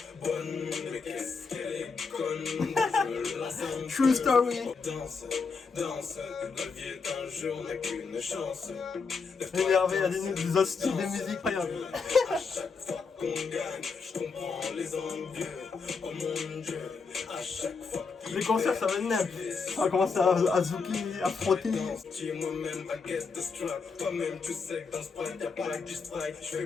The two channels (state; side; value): quieter; right; 4.9 dB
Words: bonne, mais qu'est-ce qu'elle est conne, je me lasse un True story. Danse, la vie est un jeu, on n'a qu'une chance. Énervé, il y a des autres styles de musique, incroyable. À chaque fois qu'on gagne, je comprends les envieux, oh mon Dieu, à chaque fois. Les concerts, ça va être neuf. On va commencer à zouker, à frotter. Moi-même, baguette de strap. Toi-même, tu sais que dans ce prime, y'a pas que du strike. Je fais